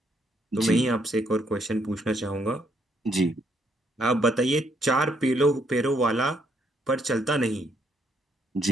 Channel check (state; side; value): normal; both; correlation 0.72